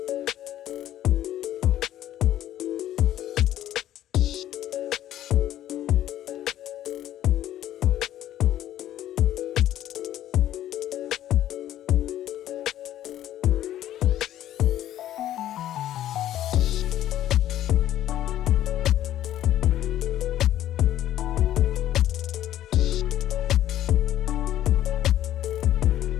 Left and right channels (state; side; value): quieter; right; 12.5 dB